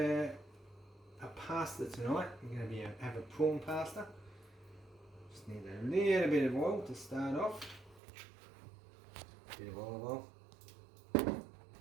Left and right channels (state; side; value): drops out; left; at 8.0 s